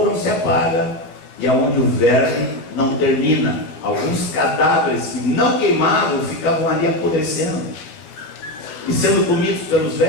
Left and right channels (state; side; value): late; right; 13 ms